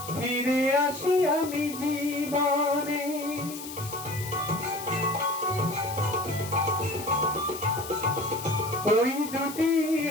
ফিরে আসি আমি জীবনে। ওই দুটি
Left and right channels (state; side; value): noise; left; hiss, 12 dB below the sound